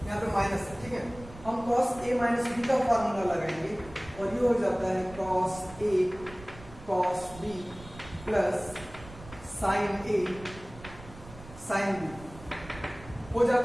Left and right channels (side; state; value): right; noise; rumble, 17 dB below the sound